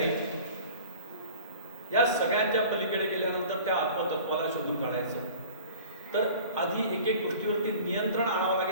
या सगळ्यांच्या पलीकडे गेल्यानंतर त्या आत्मतत्वाला शोधून काढायचं. तर आधी एक एक गोष्टीवरती नियंत्रण आणावं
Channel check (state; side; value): inverted; both; correlation -0.43